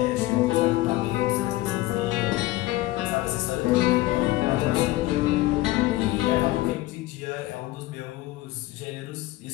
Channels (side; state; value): right; quieter; 17.5 dB